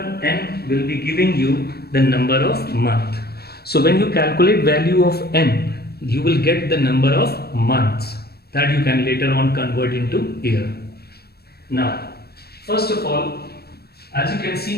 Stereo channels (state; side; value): late; right; 0.46 ms